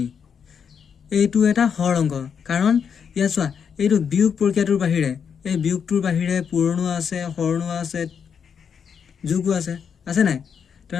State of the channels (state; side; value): quieter; right; 7.0 dB